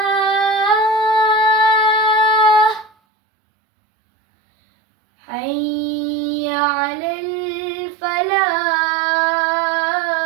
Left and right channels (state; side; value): drops out; left; at 2.9 s